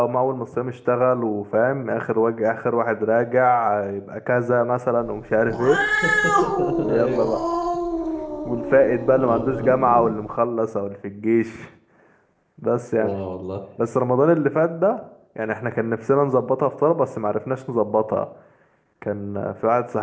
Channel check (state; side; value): identical; both; correlation 1.00